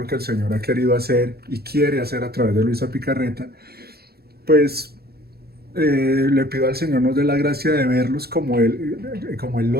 que el Señor ha querido hacer y quiere hacer a través de Luisa Picarreta, pues le pido al Señor nos dé la gracia de verlos como Él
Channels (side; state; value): left; late; 0.46 ms